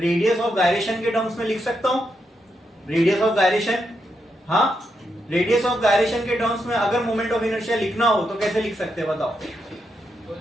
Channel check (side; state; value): both; normal; correlation 0.82